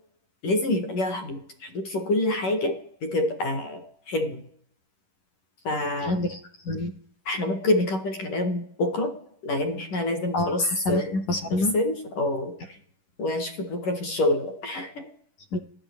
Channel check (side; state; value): right; late; 11 ms